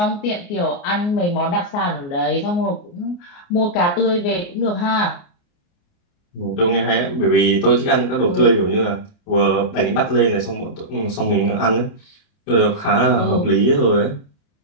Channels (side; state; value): right; late; 29 ms